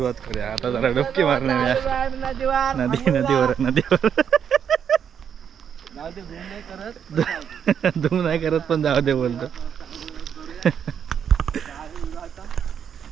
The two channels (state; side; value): quieter; left; 8.0 dB